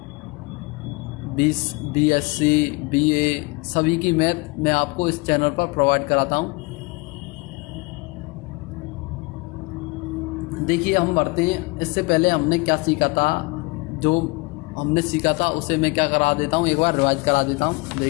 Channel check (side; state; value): right; quieter; 26.8 dB